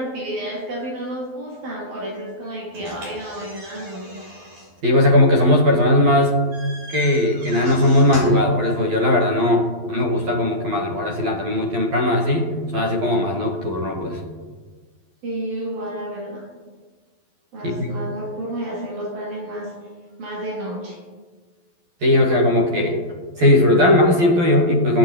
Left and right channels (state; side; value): late; left; 12 ms